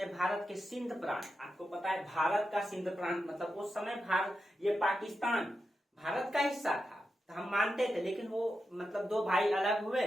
भारत के सिंध प्रांत, आपको पता है भारत का सिंध प्रांत मतलब उस समय भारत, ये पाकिस्तान भारत का हिस्सा था, तो हम मानते थे, लेकिन वो मतलब दो भाई अलग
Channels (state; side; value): normal; both; correlation 0.89